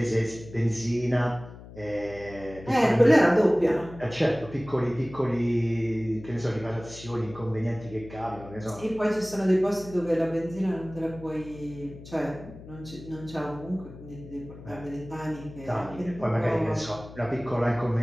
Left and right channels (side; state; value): left; noise; hum, 16 dB below the sound